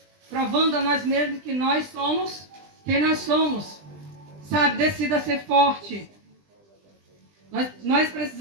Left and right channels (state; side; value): late; left; 20 ms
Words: Provando a nós mesmos que nós somos quem nós somos. Sabe, decida ser forte. Nós